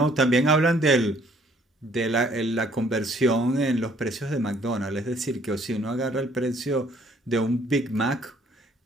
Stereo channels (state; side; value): normal; both; correlation 0.62